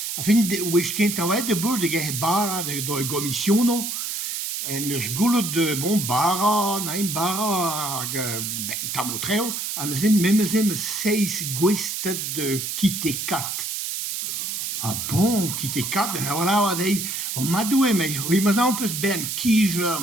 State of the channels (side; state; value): right; noise; hiss, 3 dB below the sound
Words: A fin wech kent a oa de bur de ge bara de gomissiono. En eus goulout de bara, na bara hag ben tamotreo, an eus memezem 6 gwestet de kite kat. Ah bon, kite kat, voilà, wa dei, o madoue mei, oui, ma zan peus ben kijer